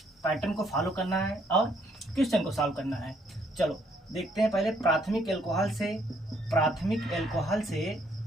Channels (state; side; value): normal; both; correlation 0.68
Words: पैटर्न को फॉलो करना है और क्वेश्चन को सॉल्व करना है। चलो देखते हैं पहले प्राथमिक एल्कोहल से